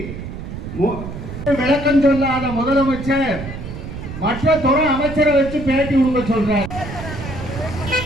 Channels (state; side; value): noise; right; rumble, 9 dB below the sound